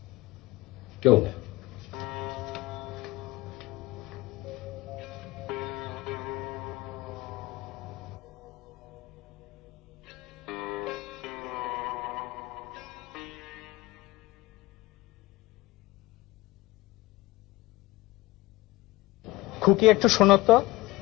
কেউ না। খুকি একটু শোনো তো।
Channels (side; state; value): right; quieter; 19.1 dB